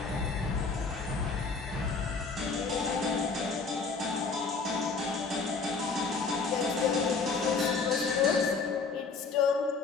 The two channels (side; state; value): right; quieter; 4.6 dB